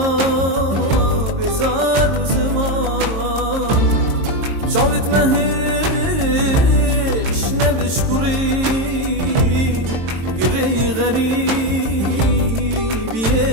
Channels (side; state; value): left; late; 22 ms